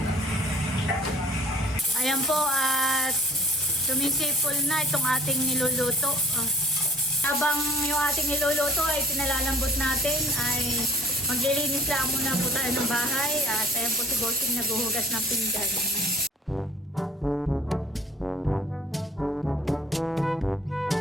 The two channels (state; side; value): normal; both; correlation 0.51